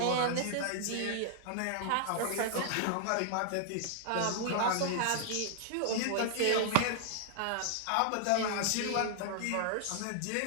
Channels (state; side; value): different; both; correlation 0.00